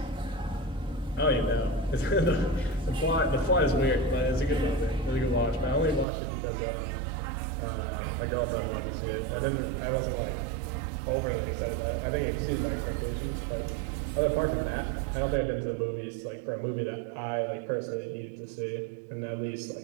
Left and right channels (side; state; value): left; drops out; at 6.1 s